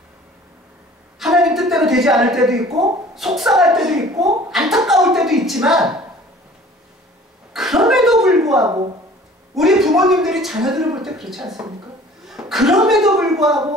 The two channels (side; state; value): both; normal; correlation 0.49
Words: 하나님 뜻대로 되지 않을 때도 있고 속상할 때도 있고 안타까울 때도 있지만 그럼에도 불구하고 우리 부모님들이 자녀들을 볼 때 그렇지 않습니까? 그럼에도